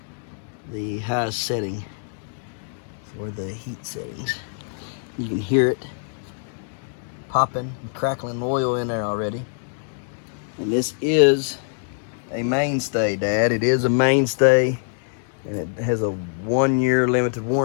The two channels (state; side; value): silent; right; digital silence